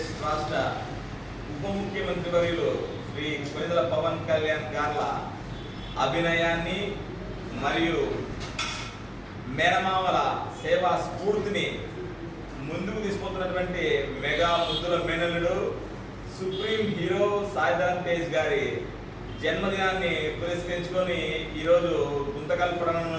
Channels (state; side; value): identical; both; correlation 1.00